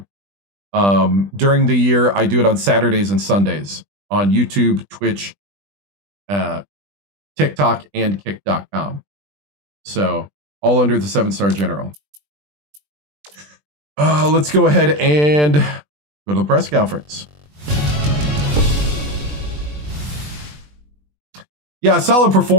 During the year, I do it on Saturdays and Sundays on YouTube, Twitch, TikTok, and Kick.com. So all under the 7-star general. Let's go ahead and go to the press conference. Yeah, solid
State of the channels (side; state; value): left; late; 20 ms